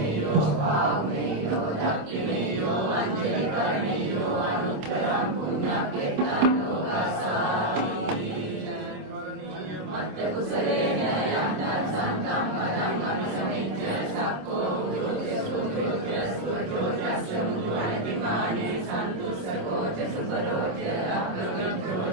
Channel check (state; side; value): late; left; 26 ms